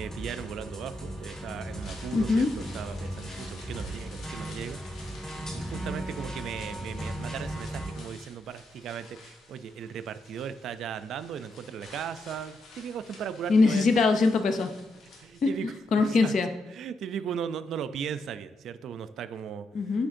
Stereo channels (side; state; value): both; normal; correlation 0.81